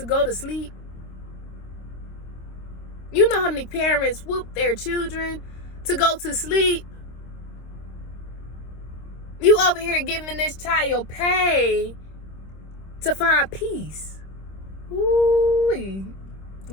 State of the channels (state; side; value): late; right; 26 ms